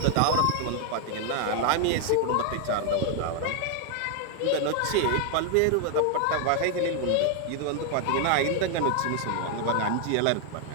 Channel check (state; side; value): different; both; correlation 0.00